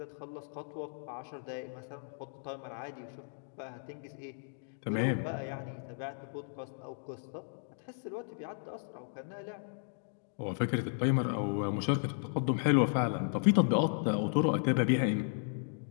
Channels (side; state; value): right; silent; digital silence